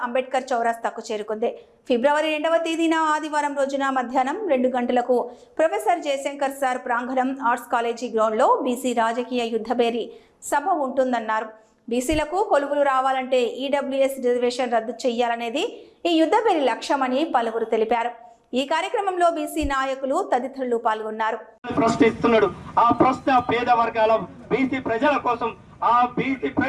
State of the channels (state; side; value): identical; both; correlation 1.00